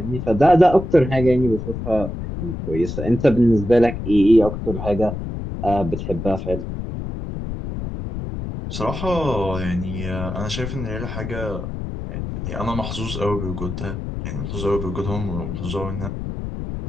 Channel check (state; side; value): noise; left; rumble, 6 dB below the sound